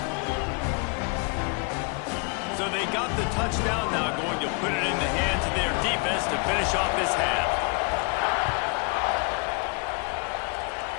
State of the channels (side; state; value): right; quieter; 34.8 dB